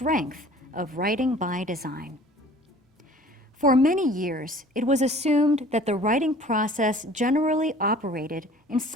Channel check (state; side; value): normal; both; correlation 0.49